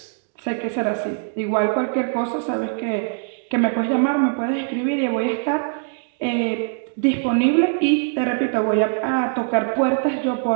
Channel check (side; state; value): left; silent; digital silence